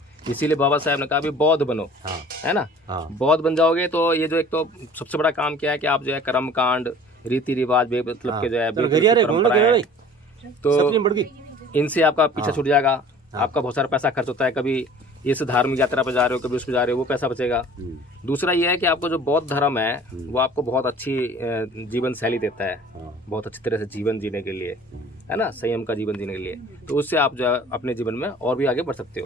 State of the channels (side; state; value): both; normal; correlation 0.47